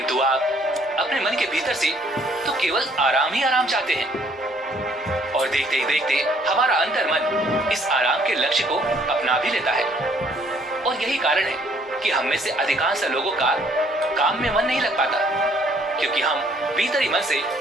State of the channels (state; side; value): normal; both; correlation 0.62